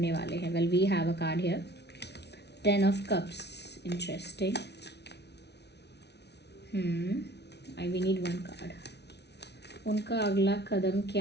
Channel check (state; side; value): late; right; 0.49 ms